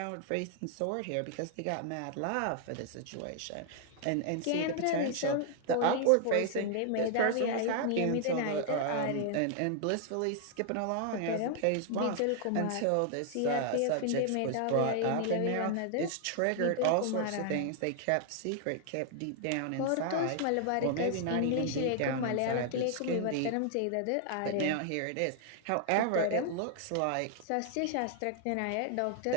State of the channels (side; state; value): both; different; correlation 0.00